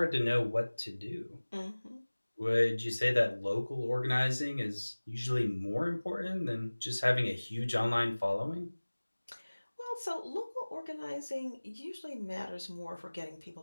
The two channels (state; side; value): inverted; both; correlation -1.00